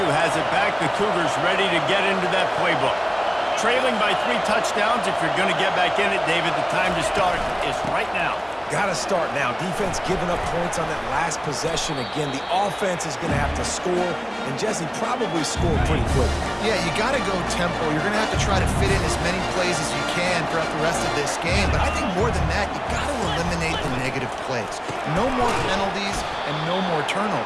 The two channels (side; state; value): both; identical; correlation 1.00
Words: has it back. The Cougars ready to get into that playbook. Trailing by 3 touchdowns. If you're going to get back in it, David, the time to start is right now. Got to start now. Defense giving up points on that last possession. Again, the offense is going to have to score, and Jesse probably score pretty quick. Yeah, you got to go tempo. You're going to have to try to fit in as many plays as you can throughout the rest of this game. But I think more than that, you got to eliminate the negative plays. No more penalties and no more